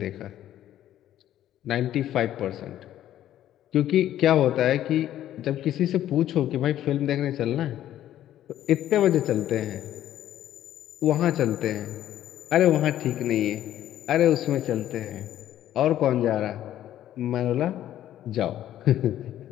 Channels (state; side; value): quieter; right; 12.1 dB